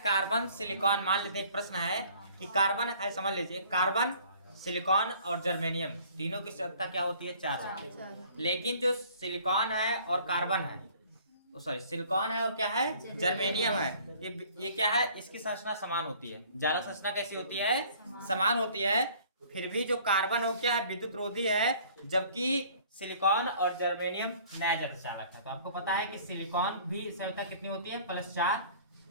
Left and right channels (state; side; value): inverted; both; correlation -0.53